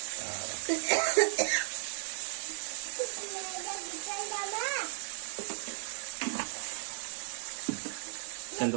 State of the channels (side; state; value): left; silent; 55 dB below the other